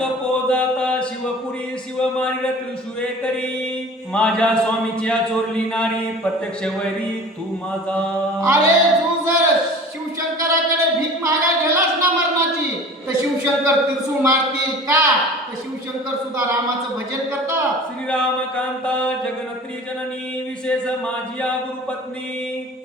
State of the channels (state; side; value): normal; both; correlation 0.42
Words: जाता शिवपुरी शिव मारिल त्रिशुरे करी माझ्या स्वामीच्या चोरली नारी प्रत्यक्ष वैरी तू माझा. अरे तू जर शिवशंकराकडे भीक मागायला गेलास ना मरणाची तर शिवशंकर त्रिशूळ मारतील का? तर शिवशंकर सुद्धा रामाचं भजन करतात. श्रीराम कांता जगनत्री जननी विशेष माझी गुरुपत्नी